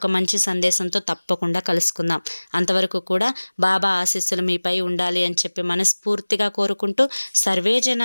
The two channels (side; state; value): both; inverted; correlation -1.00